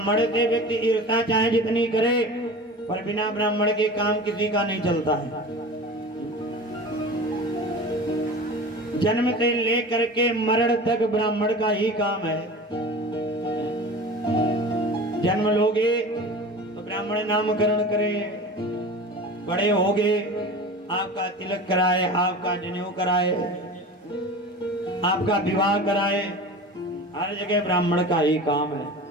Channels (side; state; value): both; normal; correlation 0.35